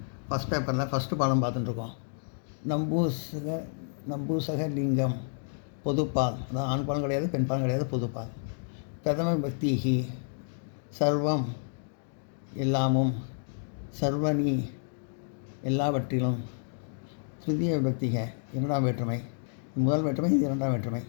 ஃபஸ்ட் பேப்பரில் ஃபஸ்ட்டு பாடம் பார்த்துட்டுருக்கோம். நம்பூசக லிங்கம் பொதுப்பால், அதான் ஆண் பாலம் கிடையாது, பெண் பாலம் கிடையாது, பொதுப்பால். பிரதம பக்திஹி சர்வம் எல்லாமும், சர்வனி எல்லாவற்றிலும், திருதிய விபக்திக இரண்டாம் வேற்றுமை, முதல் வேற்றுமை இது இரண்டாம் வேற்றுமை.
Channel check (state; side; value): silent; right; digital silence